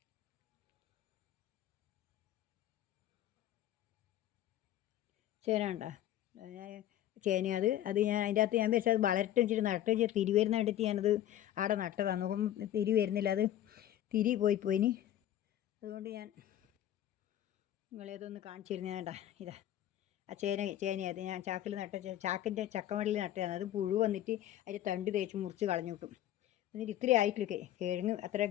ചേന കണ്ടാ, ചേന. അത് ഞാൻ അതിൻ്റെ അകത്ത് ഞാൻ വെച്ചാൽ അത് വളരട്ടെ വെച്ചിട്ട് നട്ട് വെച്ചാൽ തിരി വരുന്ന കണ്ടിട്ട് ഞാനത് അവിടെ നട്ടതാണ്. നോക്കുമ്പോൾ തിരി വരുന്നില്ല. അത് തിരി പോയിനി. അതുകൊണ്ട് ഞാൻ നിങ്ങളേതൊന്ന് കാണിച്ചു തരുന്നത്. വേണ്ട ഇതാ ആ ചേനയത് ഞാൻ ചാക്കിൽ ചാക്കിൻ്റെ ചക്കമടലിൽ നട്ടതാണ്. അത് പുഴു വന്നിട്ട് അതിൻ്റെ തണ്ട് തേച്ച് മുറിച്ച് കളഞ്ഞു കിട്ടും. എന്നിട്ട് ഇത്രയും ആയിട്ടില്ല കിഴങ്ങ്. അത്ര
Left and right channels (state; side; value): quieter; right; 12.3 dB